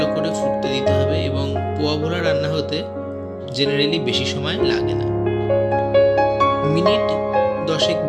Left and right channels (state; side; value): identical; both; correlation 1.00